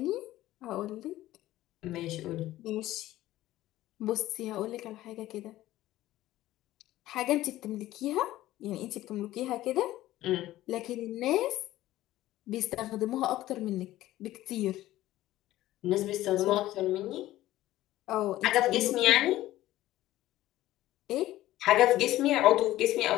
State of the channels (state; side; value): quieter; right; 15.3 dB